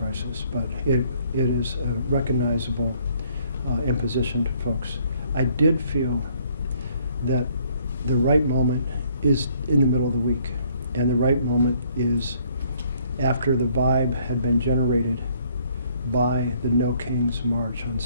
but it is a recognizable imposition to folks. I did feel that the right moment is in the middle of the week, and the right moment is after the vibe had been generated by the No Kings March on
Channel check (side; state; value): both; inverted; correlation -0.64